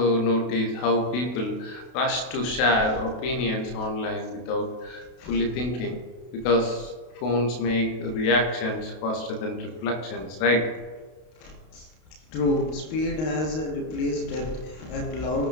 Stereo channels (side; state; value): right; late; 32 ms